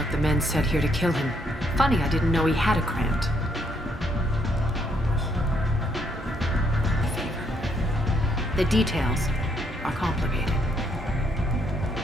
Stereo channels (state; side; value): normal; both; correlation 0.73